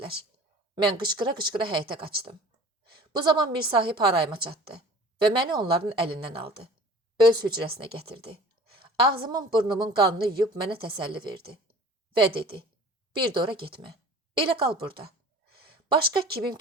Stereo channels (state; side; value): normal; both; correlation 0.45